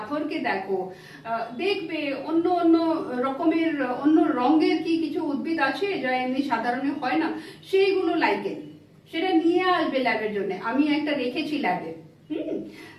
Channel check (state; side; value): identical; both; correlation 1.00